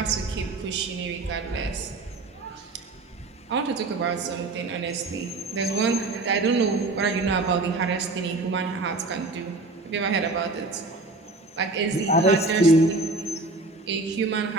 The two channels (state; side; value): quieter; left; 3.2 dB